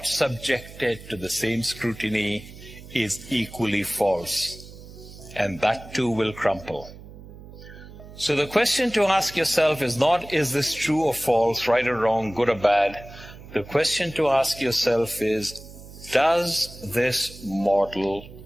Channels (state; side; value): noise; right; hum, 17 dB below the sound